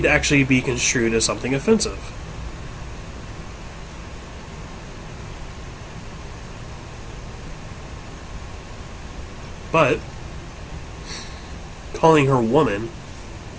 actually be construed as something offensive. But calling her woman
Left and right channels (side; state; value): both; identical; correlation 1.00